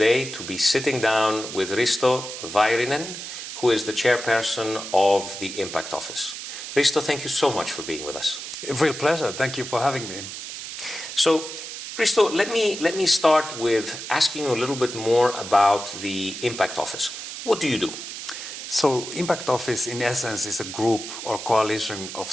to be sitting down with Risto Vayrynen, who is the chairperson of the Impact Office. Risto, thank you so much for being with us. A real pleasure. Thank you for having me. So, Risto, let me start with asking you a little bit more about the Impact Office. What do you do? So Impact Office, in essence, is a group or coalition of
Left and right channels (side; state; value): right; noise; hiss, 9 dB below the sound